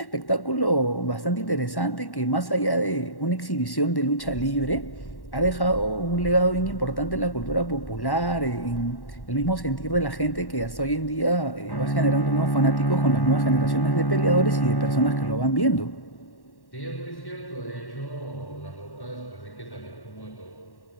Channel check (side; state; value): right; late; 1.1 ms